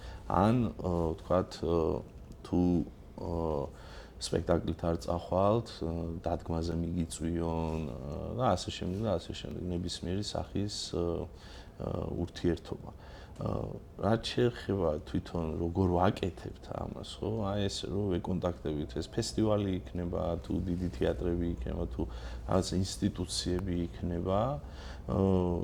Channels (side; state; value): both; identical; correlation 1.00